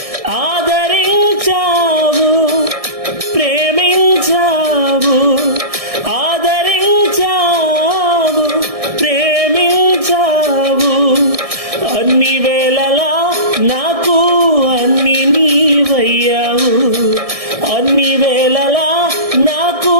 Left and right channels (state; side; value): late; left; 1.6 ms